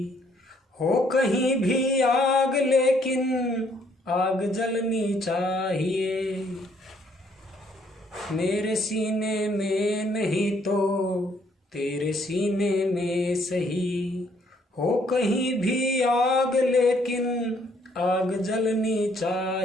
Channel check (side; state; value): both; normal; correlation 0.66